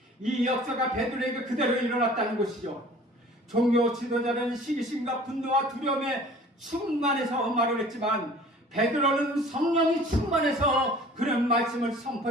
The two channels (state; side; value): normal; both; correlation 0.48